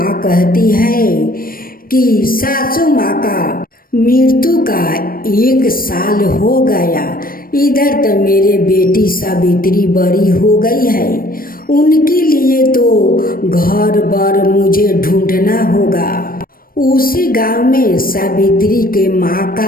कहती है कि सासू माँ का मृत्यु का 1 साल हो गया, इधर तो मेरे बेटी सावित्री बड़ी हो गई है, उनके लिए तो घर बार मुझे ढूंढना होगा। उसी गांव में सावित्री के माँ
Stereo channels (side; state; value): right; late; 0.42 ms